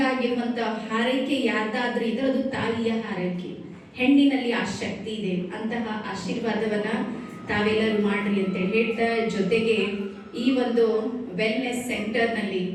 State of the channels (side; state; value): both; identical; correlation 1.00